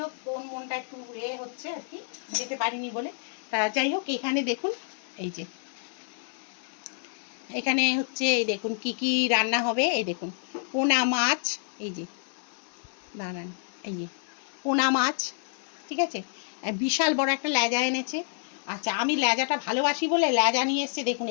হোক, কোন মনটা একটু হচ্ছে আর কি, যেতে পারিনি বলে। তা যাই হোক, এখানে দেখুন, এই যে এখানে হচ্ছে, এই দেখুন কি কি রান্না হবে। এই দেখুন পোনা মাছ, এই যে দাঁড়ান, এই যে পোনা মাছ, ঠিক আছে। বিশাল বড় একটা লেজা এনেছে। আচ্ছা, আমি লেজাটা ভালোবাসি বলে লেজা নিয়ে এসছে, দেখুন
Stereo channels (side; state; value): right; silent; digital silence